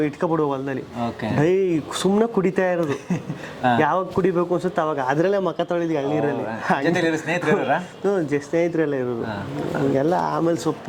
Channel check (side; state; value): both; identical; correlation 1.00